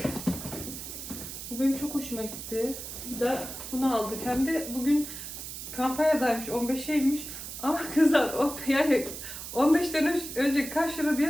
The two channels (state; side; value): noise; right; hiss, 9 dB below the sound